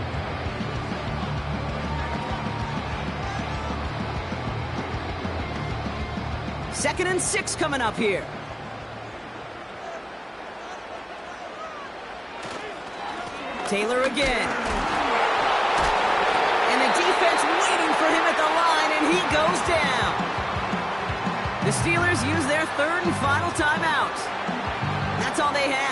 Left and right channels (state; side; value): identical; both; correlation 1.00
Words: Second and 6 coming up here. Taylor again. And the defense waiting for him at the line, and he goes down. The Steelers use their third and final timeout. That's all they